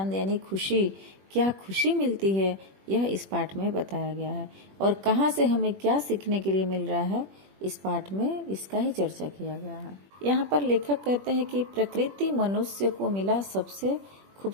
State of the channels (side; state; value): left; late; 21 ms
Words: यानी खुशी, क्या खुशी मिलती है, यह इस पाठ में बताया गया है। और कहाँ से हमें क्या सीखने के लिए मिल रहा है, इस पाठ में इसका ही चर्चा किया गया है। यहाँ पर लेखक कहते हैं कि प्रकृति मनुष्य को मिला सबसे